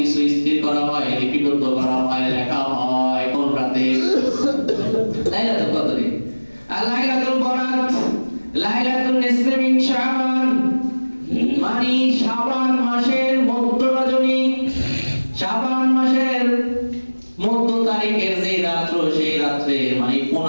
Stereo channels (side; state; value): both; inverted; correlation -1.00